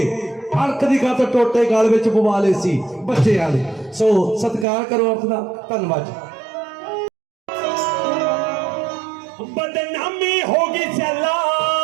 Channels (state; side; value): drops out; left; at 4.7 s